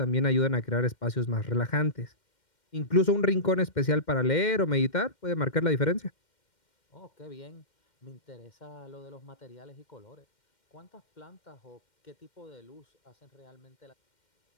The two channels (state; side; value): late; right; 2.1 ms